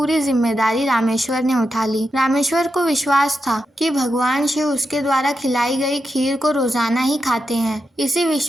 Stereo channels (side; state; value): both; normal; correlation 0.87